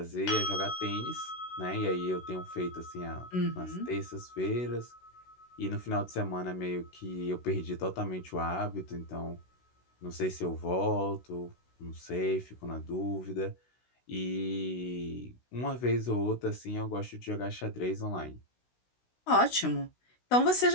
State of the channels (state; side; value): late; right; 16 ms